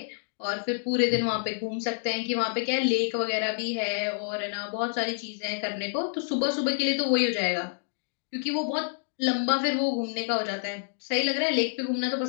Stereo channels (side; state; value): right; silent; digital silence